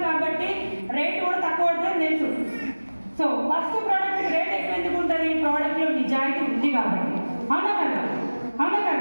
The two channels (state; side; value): inverted; both; correlation -1.00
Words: కాబట్టి రేట్ కూడా తక్కువ పడుతుంది తెలుసు. సో ఫస్ట్ ప్రోడక్ట్ రేట్ ఎక్కువ ఎందుకు ఉంటుంది? ప్రోడక్ట్లో నిజాయితీ ఉంది కాబట్టి, అవునా కదా? అవునా